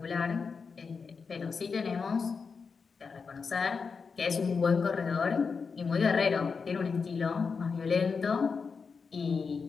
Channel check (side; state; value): right; quieter; 5.2 dB